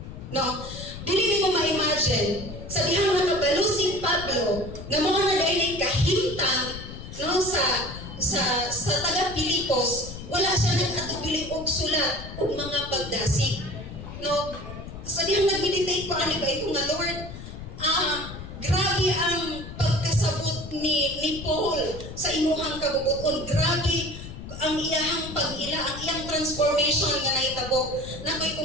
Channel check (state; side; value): noise; left; rumble, 11 dB below the sound